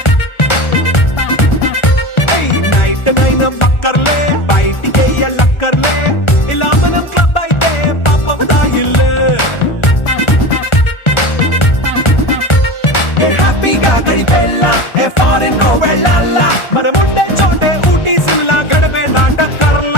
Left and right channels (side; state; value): right; late; 1.4 ms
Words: నైట్ నైన్ బక్కర్లే, బయటికి ఎల్లక్కర్లే, ఇలా మనం క్లబ్ అయితే పాపదాయిల్లే. హ్యాపీగా గడిపెల్లా, ఫారెన్ వెళ్ళాలా, మనముండే చోటే ఊటీ సిమ్లా గడిపే